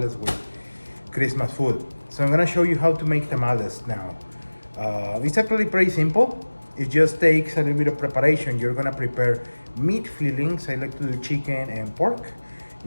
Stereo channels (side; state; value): both; inverted; correlation -1.00